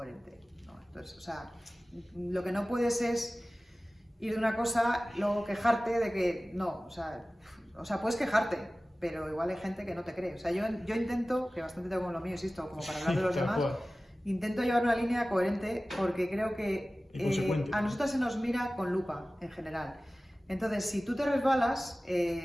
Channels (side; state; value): both; normal; correlation 0.97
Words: ¿no? Entonces, o sea, lo que no puedes es ir de una cosa, luego quejarte de que... No, o sea, puedes quejarte, pero igual hay gente que no te cree. O sea, yo intento, que bastante tengo con lo mío, insisto, como para hablar de los demás, intento llevar una línea coherente porque creo que a nosotras se nos mira con lupa, en general. Entonces, si tú te resbalas,